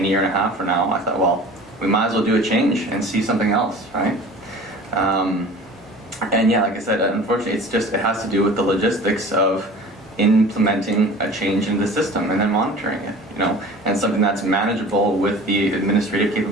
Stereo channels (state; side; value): normal; both; correlation 0.42